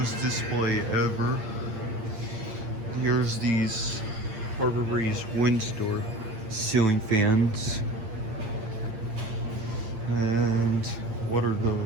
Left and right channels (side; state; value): left; late; 8.7 ms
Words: display ever. Here's these Harbor Breeze Windstor ceiling fans. And what are